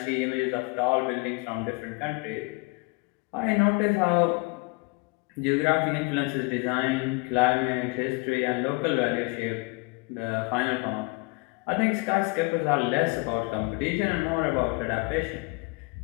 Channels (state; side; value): quieter; right; 27.9 dB